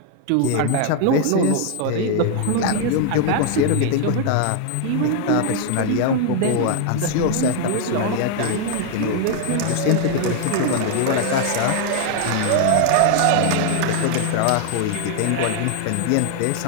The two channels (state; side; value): different; both; correlation 0.00